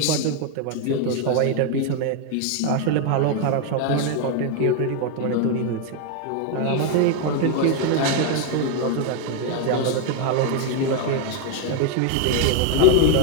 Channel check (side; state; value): both; different; correlation 0.00